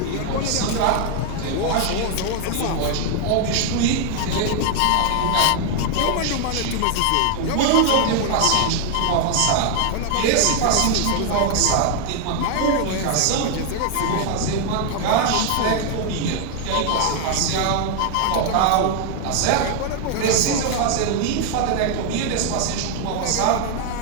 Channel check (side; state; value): both; different; correlation 0.00